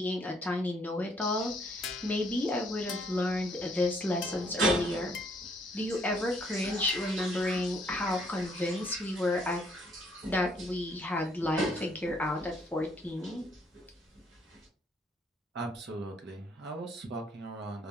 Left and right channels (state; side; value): normal; both; correlation 0.67